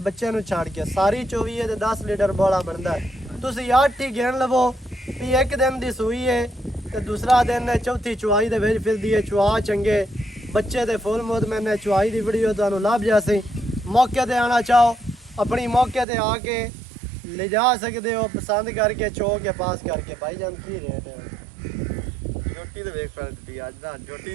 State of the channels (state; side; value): drops out; left; at 16.1 s